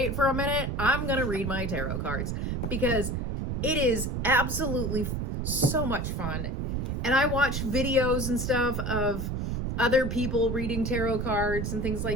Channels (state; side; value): noise; right; rumble, 2 dB below the sound